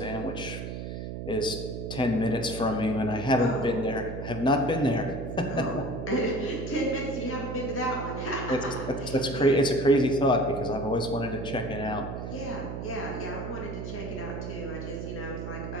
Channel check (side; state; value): right; noise; hum, 6 dB below the sound